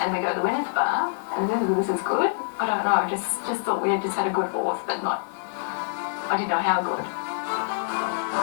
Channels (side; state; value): right; silent; digital silence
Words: we go to the winners bar, and this is good. I don't know, just thought we had just had a good horse, but not, I didn't know how good.